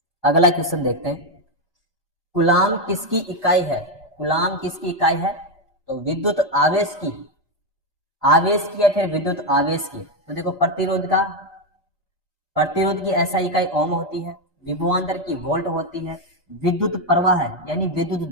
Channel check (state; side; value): normal; both; correlation 0.06